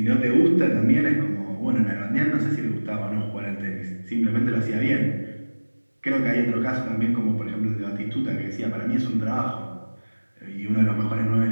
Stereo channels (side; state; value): both; inverted; correlation -1.00